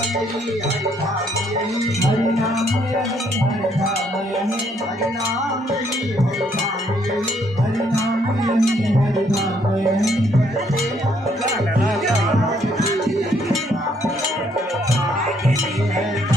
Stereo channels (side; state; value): both; normal; correlation 0.69